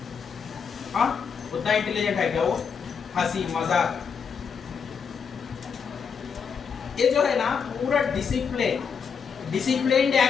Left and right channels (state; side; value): quieter; right; 6.4 dB